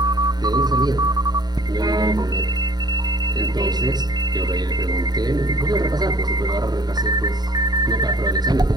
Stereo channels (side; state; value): left; late; 0.20 ms